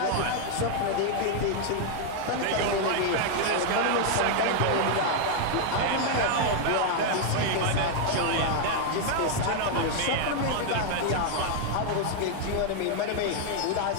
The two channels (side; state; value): both; different; correlation 0.00